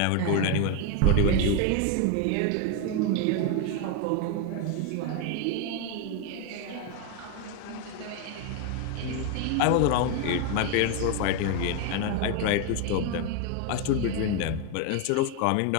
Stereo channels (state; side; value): different; both; correlation 0.01